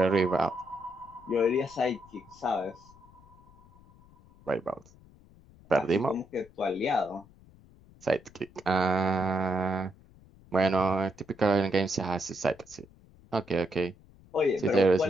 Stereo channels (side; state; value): left; noise; rumble, 25 dB below the sound